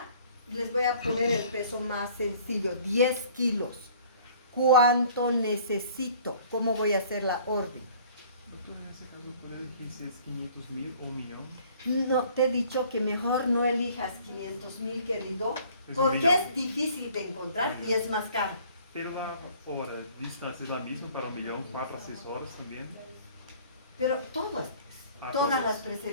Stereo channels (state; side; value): inverted; both; correlation -0.53